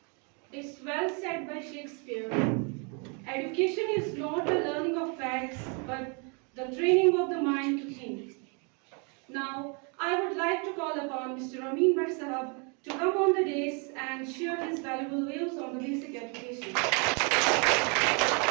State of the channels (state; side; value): quieter; left; 35.2 dB